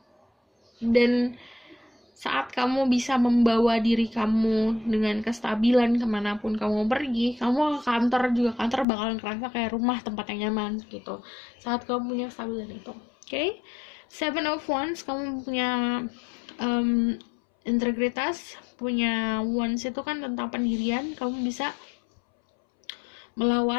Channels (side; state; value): right; drops out; at 8.8 s